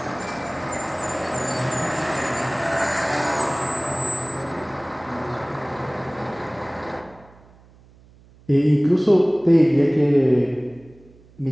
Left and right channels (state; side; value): noise; right; hum, 26 dB below the sound